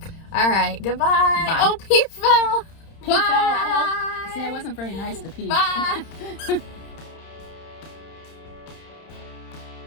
All right, goodbye. Bye. Oh, Pete fell. Pete fell. Bye. See, I wasn't very nice to Pete. Bye.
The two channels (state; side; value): late; right; 31 ms